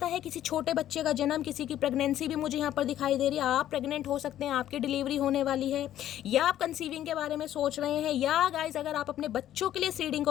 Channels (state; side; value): quieter; right; 12.0 dB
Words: है किसी छोटे बच्चे का जन्म, किसी की प्रेगनेंसी भी मुझे यहाँ पर दिखाई दे रही है। आप प्रेग्नेंट हो सकते हैं, आपकी डिलीवरी होने वाली है, या आप कंसीविंग के बारे में सोच रहे हैं, या गाइज अगर आप अपने बच्चों के लिए सीडिंग